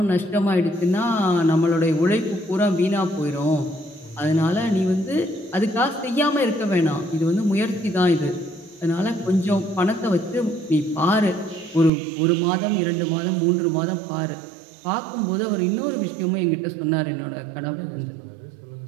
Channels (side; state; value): left; drops out; at 11.9 s